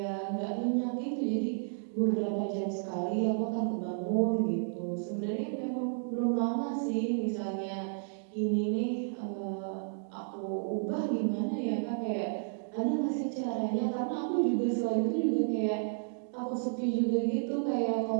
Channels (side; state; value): left; silent; digital silence